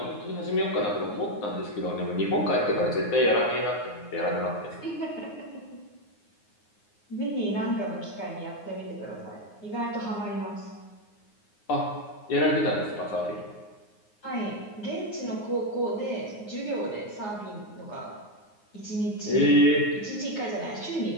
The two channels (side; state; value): right; late; 9.5 ms